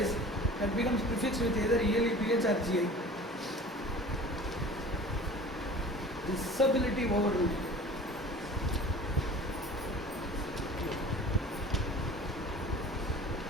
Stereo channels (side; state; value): both; normal; correlation 0.43